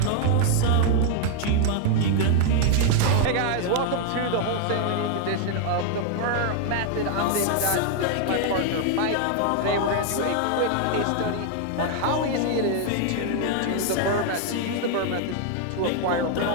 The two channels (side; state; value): both; different; correlation 0.00